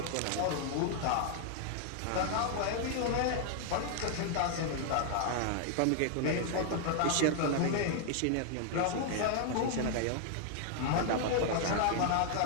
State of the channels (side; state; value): both; different; correlation 0.00